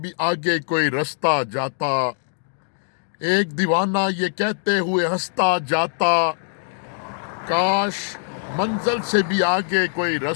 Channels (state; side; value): silent; right; digital silence